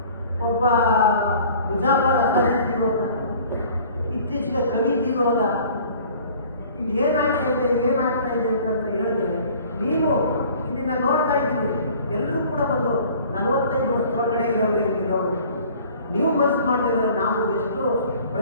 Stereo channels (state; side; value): inverted; both; correlation -0.50